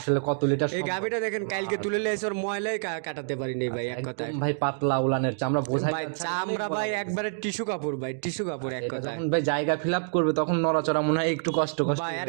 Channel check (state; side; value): silent; left; digital silence